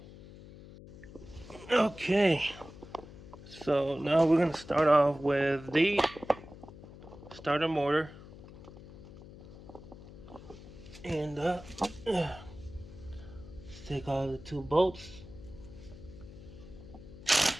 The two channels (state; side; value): noise; left; hum, 17 dB below the sound